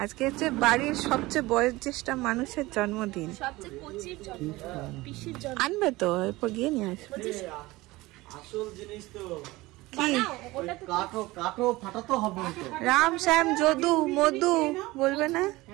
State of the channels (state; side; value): quieter; left; 20.0 dB